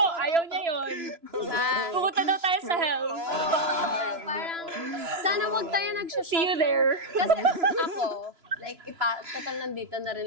Ayaw niya yun. Pupunta daw tayo sa hell. Parang, sana wag tayo nag-shut. See you there. Kasi ako, like, total nandito na rin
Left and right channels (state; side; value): late; left; 3.0 ms